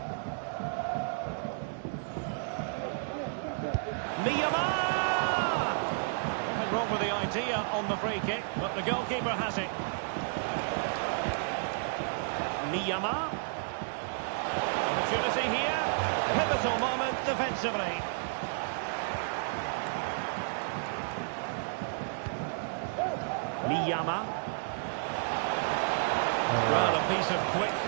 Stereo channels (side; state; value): left; silent; digital silence